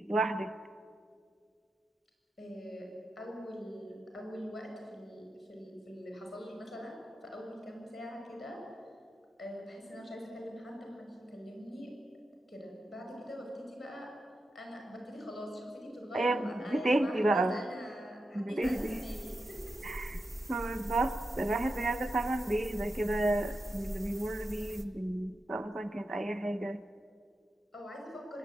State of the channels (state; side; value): normal; both; correlation 0.89